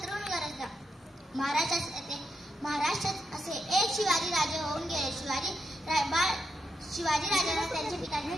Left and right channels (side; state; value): both; normal; correlation 0.82